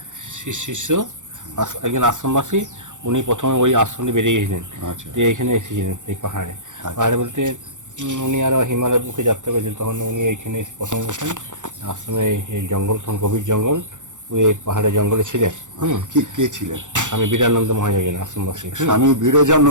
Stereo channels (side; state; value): left; late; 0.86 ms